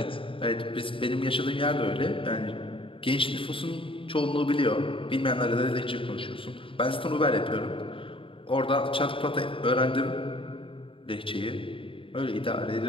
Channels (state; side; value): late; right; 0.26 ms